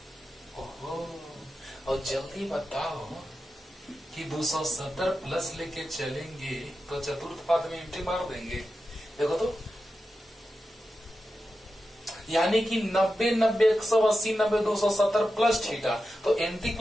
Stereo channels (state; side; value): normal; both; correlation 0.91